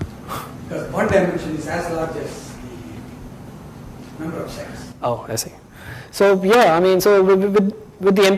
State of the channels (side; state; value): both; identical; correlation 1.00